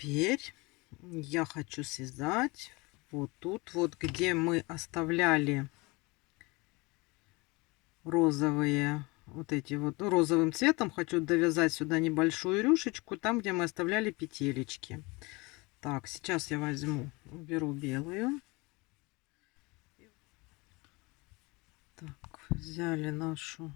я хочу связать вот тут вот, где мы оставляли розовые, вот эти вот, ну, розовым цветом хочу довязать сюда небольшую рюшечку, там, где мы оставляли петелечки. Так, сейчас я возьму, уберу белую. Так, взяли нашу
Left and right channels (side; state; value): right; quieter; 25.4 dB